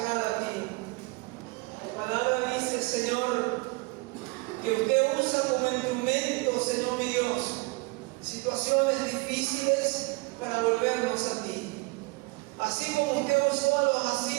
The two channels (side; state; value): left; quieter; 26.0 dB